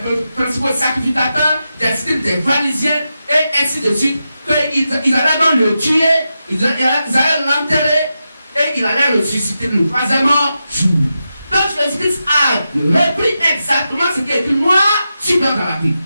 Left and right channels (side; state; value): both; inverted; correlation -0.89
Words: principaux sacrificateurs, des scribes, des pharisiens et ainsi de suite, qu'ils allaient donc le tuer, ils allaient l'enterrer et il allait ressusciter le troisième jour. Donc Jésus-Christ a repris exactement ce qui est écrit noir sur blanc dans la Bible.